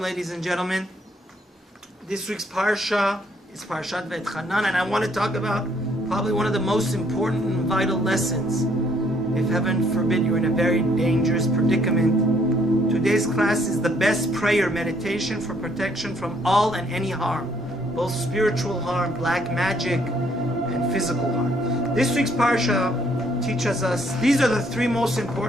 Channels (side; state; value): both; normal; correlation 0.66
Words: ladies and gentlemen. This week's parsha is Parshat V'etchanan, and I want to talk about probably one of the most important and vital lessons. If heaven forbid you're in a very dangerous predicament, today's class is the best prayer meditation for protection from all and any harm, both spiritual harm, black magic, and physical harm. This week's parsha teaches us these are the three most